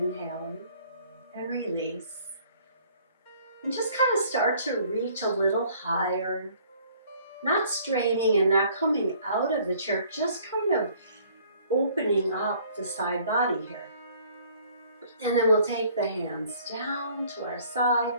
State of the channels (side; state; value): both; inverted; correlation -0.57